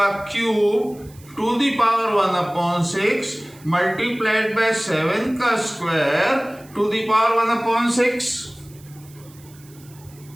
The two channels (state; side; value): noise; right; hiss, 25 dB below the sound